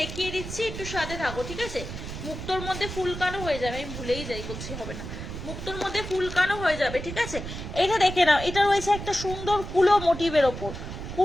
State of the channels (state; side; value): noise; right; rumble, 8 dB below the sound